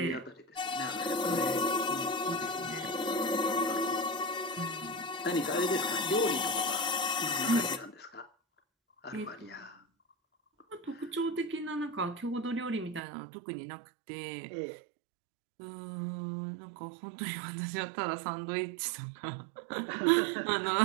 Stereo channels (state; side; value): drops out; left; at 13.0 s